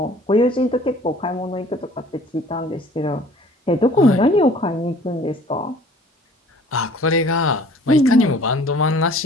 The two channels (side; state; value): both; normal; correlation 0.51